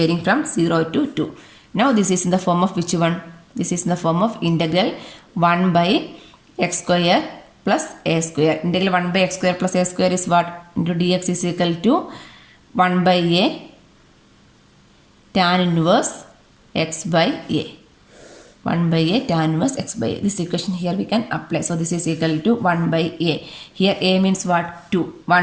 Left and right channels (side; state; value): both; identical; correlation 1.00